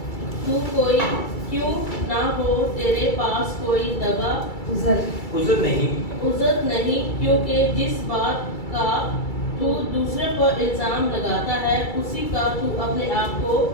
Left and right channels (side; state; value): right; late; 2.3 ms